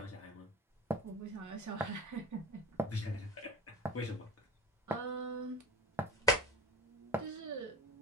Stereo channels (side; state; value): both; normal; correlation 0.33